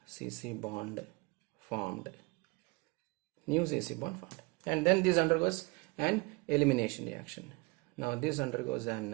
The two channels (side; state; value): left; quieter; 26.7 dB